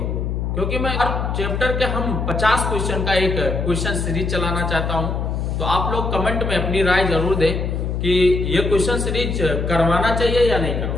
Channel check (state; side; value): noise; left; hum, 1 dB below the sound